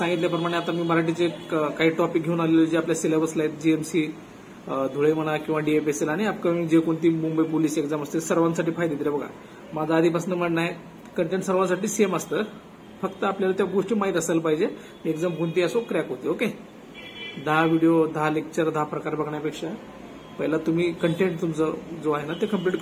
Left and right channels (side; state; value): both; identical; correlation 1.00